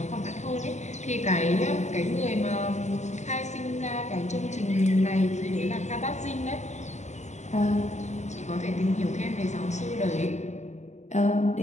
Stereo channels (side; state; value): right; late; 0.34 ms